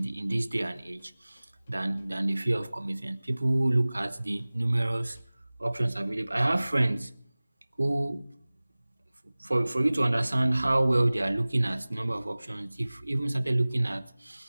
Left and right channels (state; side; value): inverted; both; correlation -0.99